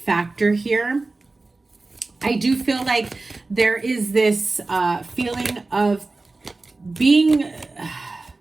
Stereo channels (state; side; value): quieter; left; 3.4 dB